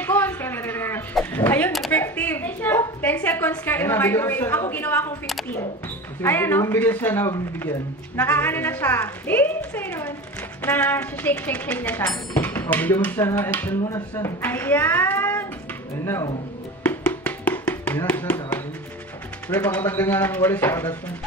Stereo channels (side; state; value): both; normal; correlation 0.31